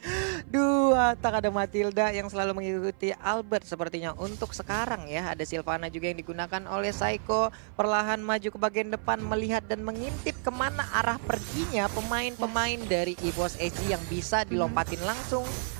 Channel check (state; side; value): silent; left; 55 dB below the other